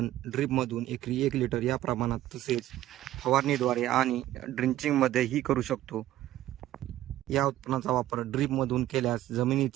ड्रीपमधून एकरी 1 लिटर या प्रमाणात तसेच फवारणीद्वारे आणि ड्रिंचिंगमध्येही करू शकतो. या उत्पन्नाचा वापर ड्रीपमधून केल्यास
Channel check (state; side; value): quieter; left; 14.0 dB